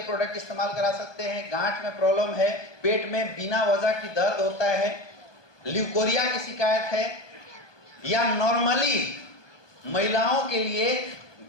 प्रोडक्ट इस्तेमाल करा सकते हैं। गांठ में प्रॉब्लम है, पेट में बिना वजह की दर्द होता है, ल्यूकोरिया की शिकायत है, या नॉर्मली महिलाओं के लिए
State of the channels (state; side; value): late; right; 1.2 ms